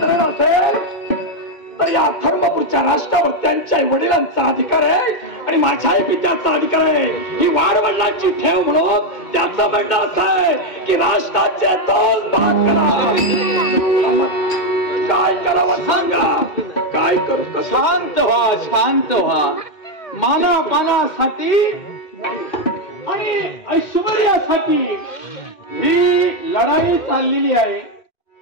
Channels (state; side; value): late; right; 2.1 ms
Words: तऱ्हेने असेल तर या धर्मपूरच्या राष्ट्रावर त्यांच्या वडिलांचा अधिकार आहे आणि माझ्याही पित्याचा अधिकार आहे. ही वाडवडिलांची ठेव म्हणून त्याचं म्हणणं असं आहे की राष्ट्राचे 2 भाग करा. काय करावं सांगा, काय करू कसं? शांत व्हा, शांत व्हा. मानापानासाठी आणि ऐश्वर्यासाठी ही लढाई चाललेली आहे.